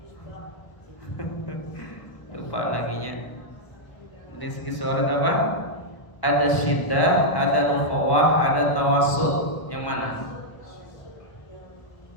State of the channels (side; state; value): right; late; 1.2 ms